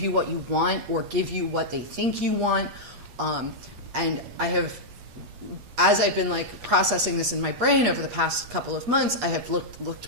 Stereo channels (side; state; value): left; late; 8.4 ms